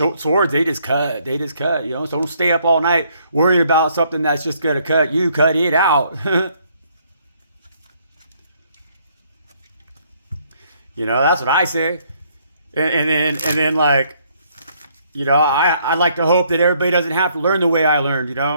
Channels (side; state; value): both; inverted; correlation -0.67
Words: swords. They just cut, you know? So don't stay up all night worrying about something that's just going to cut you. Cut it out. You know, that's what I say. And then like, you know, I like to hope that everybody doesn't have to learn the way I learned, you